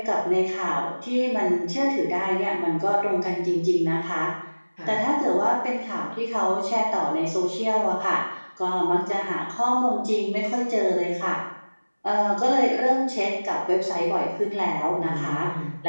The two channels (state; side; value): inverted; both; correlation -1.00